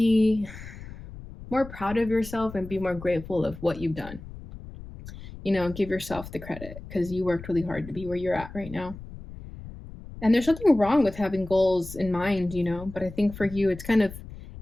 more proud of yourself and be more grateful of what you've done. Give yourself the credit because you worked really hard to be where you're at right now. And there's nothing wrong with having goals in mind, but I think for you, it's kind of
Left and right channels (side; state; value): left; noise; rumble, 14 dB below the sound